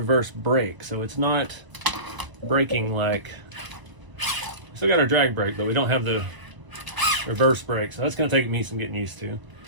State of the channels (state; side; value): late; left; 1.0 ms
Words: brake, so it's not braking like. Still got our drag brake, but we don't have the reverse brake, so that's going to take me some getting used to.